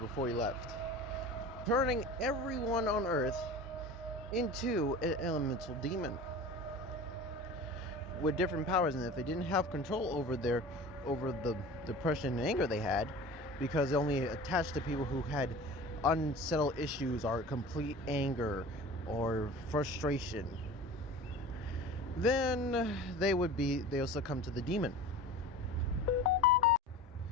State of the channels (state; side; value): normal; both; correlation 0.37